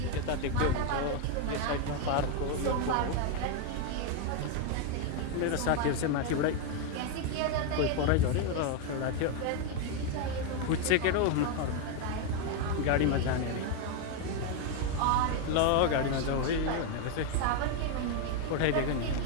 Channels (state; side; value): different; both; correlation 0.01